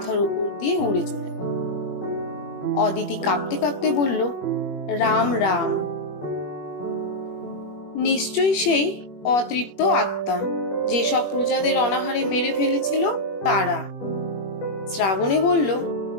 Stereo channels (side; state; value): right; late; 21 ms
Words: উপর দিয়ে উড়ে চলে গেল। অদিতি কাঁপতে কাঁপতে বলল, রাম রাম। নিশ্চয়ই সেই অতৃপ্ত আত্মা, যেসব প্রজাদের অনাহারে মেরে ফেলেছিল তারা। শ্রাবণী বলল,